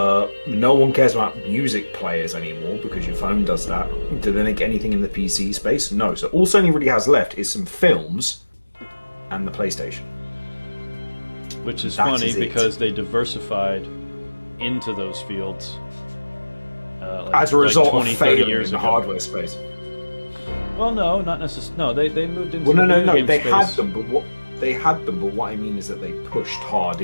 one cares about music players anymore because your phone does that. Do they make anything in the PC space? No. So all Sony really has left is some films and the PlayStation. Which is funny because they diversified into those fields. As a result 20, of failing 30 years in the ago. hardware space. Well, no, not necessarily. No, they moved into the video game they space. had them, but what I mean is that they pushed hard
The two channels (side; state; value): both; inverted; correlation -1.00